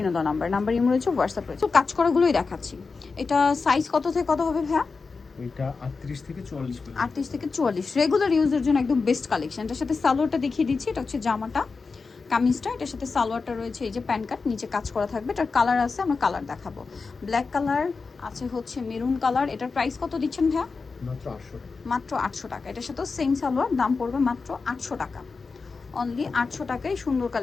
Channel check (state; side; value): quieter; right; 4.5 dB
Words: দেওয়া নাম্বার ইমো রয়েছে, হোয়াটসঅ্যাপ রয়েছে। তো কাজ করাগুলোই দেখাচ্ছি। এটা সাইজ কত থেকে কত হবে ভাইয়া? এটা 38 থেকে 44 পর্যন্ত। 38 থেকে 44 রেগুলার ইউজের জন্য একদম বেস্ট কালেকশন। এটার সাথে সালোয়ারটা দেখিয়ে দিচ্ছি। এটা হচ্ছে জামাটা, কামিজটা, এটার সাথে সালোয়ারটা রয়েছে এই যে প্যান্ট কাট, নিচে কাজ করা থাকবে। এটার কালার আছে, আমরা কালার দেখাবো। ব্ল্যাক কালার আছে, হচ্ছে মেরুন কালার। এটার প্রাইস কত দিচ্ছেন ভাইয়া? মাত্র 800 টাকা। মাত্র 800 টাকা। এটার সাথে সেম সালোয়ার, দাম পড়বে মাত্র 800 টাকা। অনলি 800 টাকায় সুন্দর